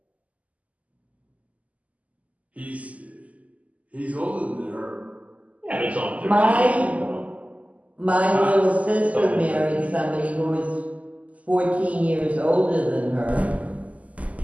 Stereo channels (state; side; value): late; left; 0.071 ms